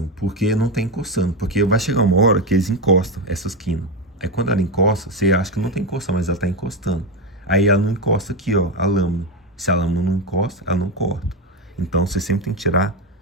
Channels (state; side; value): normal; both; correlation 0.12